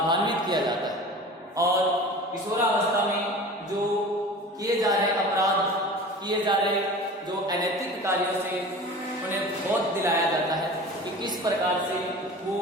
किया जाता है। और किशोरावस्था में जो किए जा रहे अपराध, किए जा रहे जो अनैतिक कार्यों से उन्हें बोध दिलाया जाता है कि किस प्रकार से वो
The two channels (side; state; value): both; normal; correlation 0.38